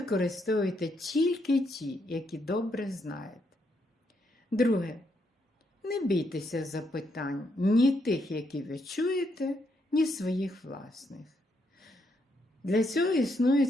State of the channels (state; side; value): normal; both; correlation 0.77